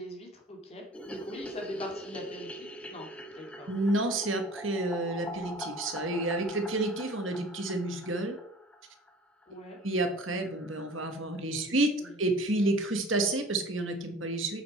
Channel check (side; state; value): both; normal; correlation 0.45